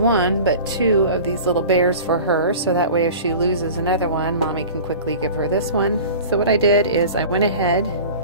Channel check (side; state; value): both; inverted; correlation -0.39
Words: but two of these little bears for her, so that way if she loses another one, Mommy can quickly give her this one. So what I did is I went ahead